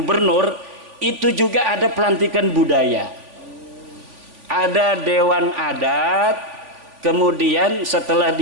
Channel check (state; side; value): late; left; 3.5 ms